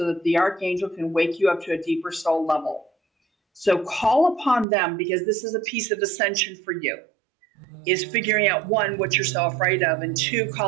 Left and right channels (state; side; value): drops out; left; at 4.7 s